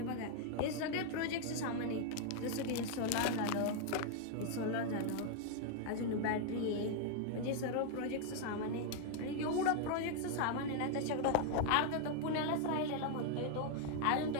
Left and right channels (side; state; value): both; different; correlation 0.00